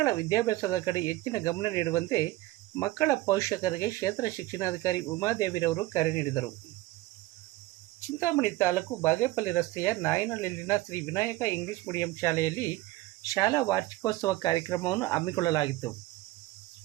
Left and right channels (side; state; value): left; quieter; 18.1 dB